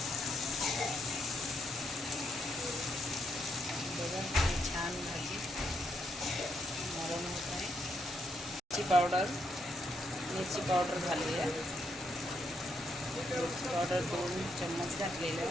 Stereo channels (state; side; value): normal; both; correlation 0.78